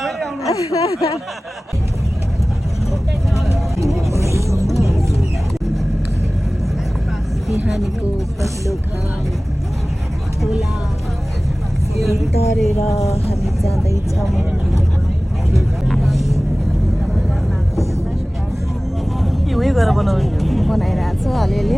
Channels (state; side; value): normal; both; correlation 0.98